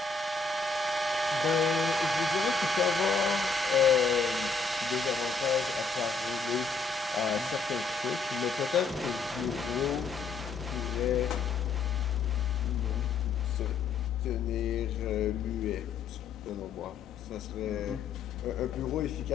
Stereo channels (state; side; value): quieter; right; 4.4 dB